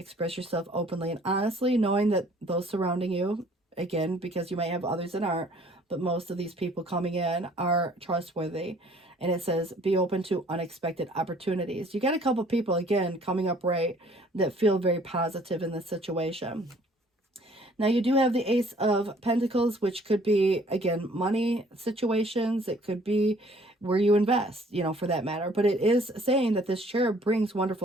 yourself openly and honestly, knowing that those surrounding you, again, because you might have others that aren't, but most of these people coming in are trustworthy. And it says, be open to unexpected opportunities. You got a couple people, again, coming up right that feel very positive in this situation. Now, you do have the Ace of Pentacles, which could be, again, money situations. It could be where you invest, you know, for that matter. But it is saying that this cherub brings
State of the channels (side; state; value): both; normal; correlation 0.57